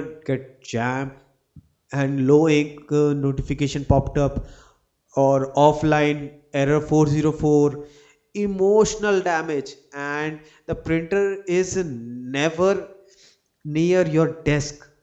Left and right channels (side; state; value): both; identical; correlation 1.00